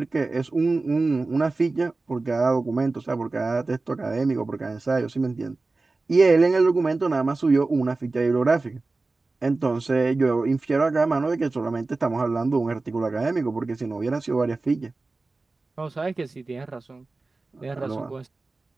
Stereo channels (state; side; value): quieter; left; 3.5 dB